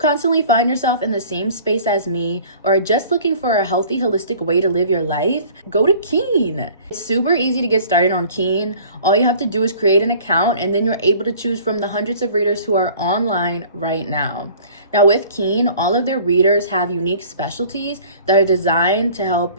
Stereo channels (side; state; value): both; inverted; correlation -0.49